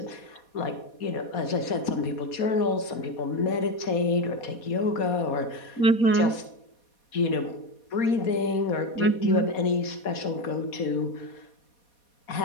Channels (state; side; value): late; right; 4.2 ms